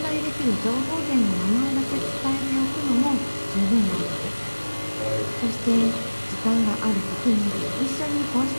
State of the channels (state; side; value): inverted; both; correlation -1.00